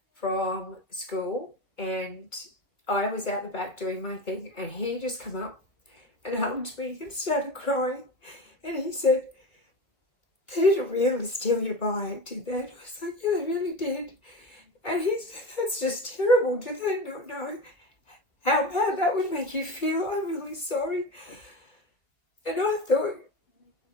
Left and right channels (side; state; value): right; late; 1.9 ms